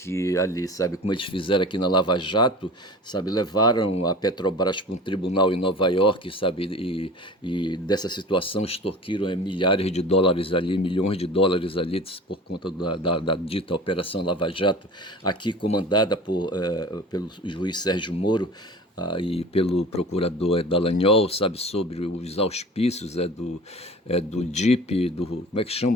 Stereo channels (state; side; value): normal; both; correlation 0.39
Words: ali, sabe, como eles fizeram aqui na Lava Jato, sabe, levaram a Petrobras para um tribunal em Nova York, sabe, e dessa situação extorquiram milhares de dólares ali, milhões de dólares ali por conta da dita Operação Lava Jato, aqui comandada pelo juiz Sérgio Moro e pelo procurador Dallagnol, sabe, sobre os auspícios do DIP, como é que